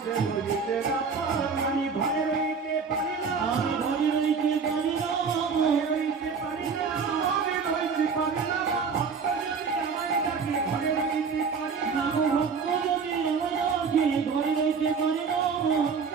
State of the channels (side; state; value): left; quieter; 5.5 dB